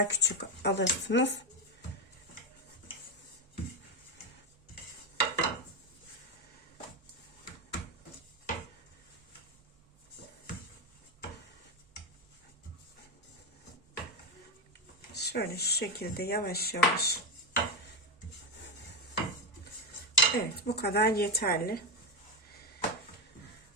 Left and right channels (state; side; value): normal; both; correlation 0.10